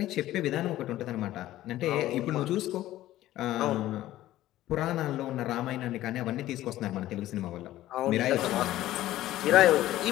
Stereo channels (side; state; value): right; quieter; 14.7 dB